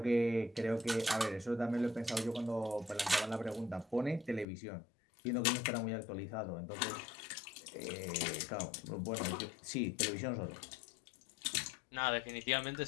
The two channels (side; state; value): right; drops out; at 4.5 s